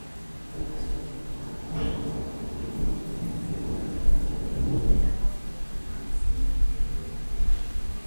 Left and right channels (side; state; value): both; inverted; correlation -1.00